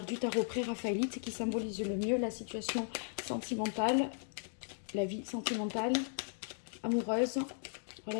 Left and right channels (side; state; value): right; silent; digital silence